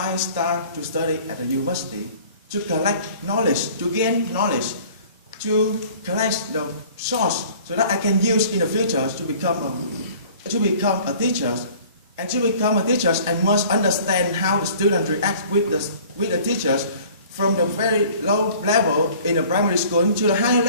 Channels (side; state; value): both; inverted; correlation -0.50